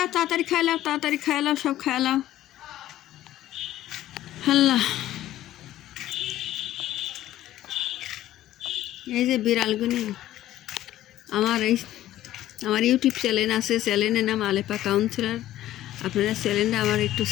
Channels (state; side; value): quieter; right; 13.8 dB